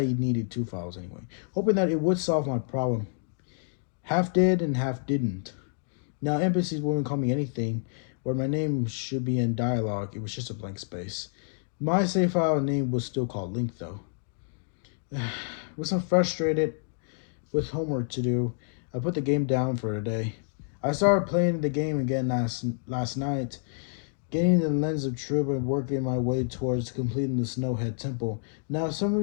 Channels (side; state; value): right; silent; digital silence